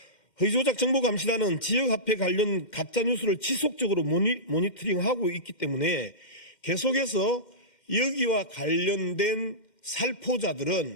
허위조작 정보감시단은 지역화폐 관련 가짜뉴스를 지속적으로 모니터링하고 있기 때문에 계속해서 여기와 관련된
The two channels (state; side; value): late; right; 2.1 ms